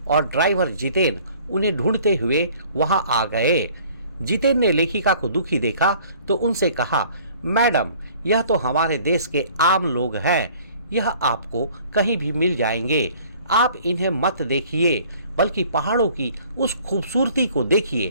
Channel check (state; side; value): inverted; both; correlation -0.53